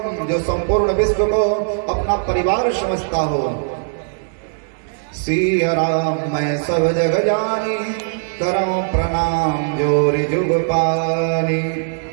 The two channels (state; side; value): silent; left; digital silence